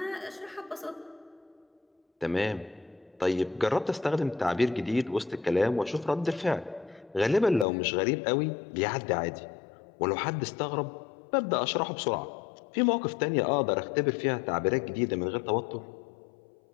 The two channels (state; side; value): drops out; right; at 7.7 s